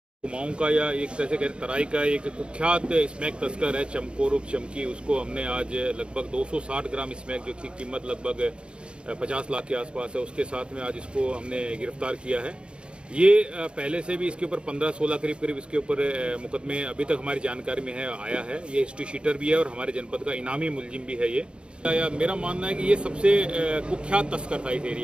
कुमाऊं का या एक तरह से तराई का एक कुख्यात स्मैक तस्कर है चमकोर उर्फ चमकी, उसको हमने आज लगभग 260 ग्राम स्मैक जो की कीमत लगभग 50 लाख के आसपास है, उसके साथ में आज इसको हमने गिरफ्तार किया है। ये पहले से भी इसके ऊपर 15-16 करीब इसके ऊपर मुकदमे अभी तक हमारी जानकारी में है आया है। ये हिस्ट्री शीटर भी है और हमारे जनपद का इनामी मुलजिम भी है ये। मेरा मानना है कि ये सबसे कुख्यात तस्कर था इस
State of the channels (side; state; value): left; late; 0.055 ms